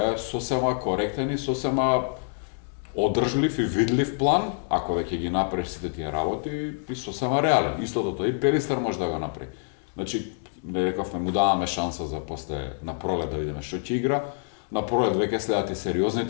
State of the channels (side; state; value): right; silent; digital silence